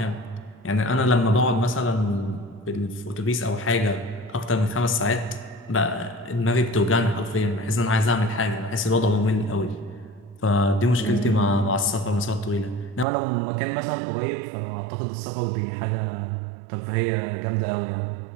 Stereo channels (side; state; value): left; drops out; at 13.1 s